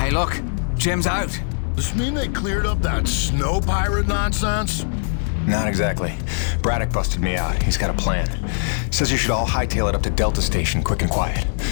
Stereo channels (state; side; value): silent; right; digital silence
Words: look. Jim's out. Does this mean they cleared up that snow pirate nonsense? Not exactly. Braddock busted me out. He's got a plan. Says you should all hightail it up to Delta Station, quick and quiet.